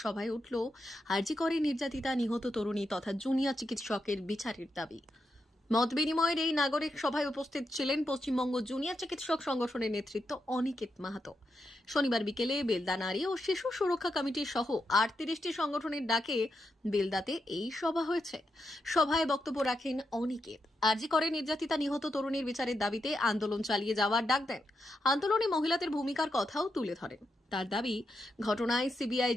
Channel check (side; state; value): both; normal; correlation 0.85